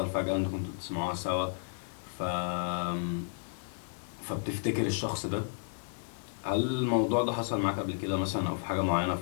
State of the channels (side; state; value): right; silent; digital silence